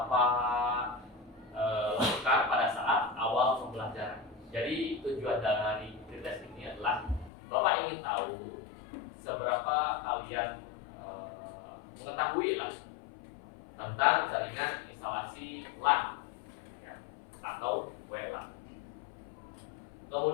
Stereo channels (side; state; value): right; drops out; at 7.3 s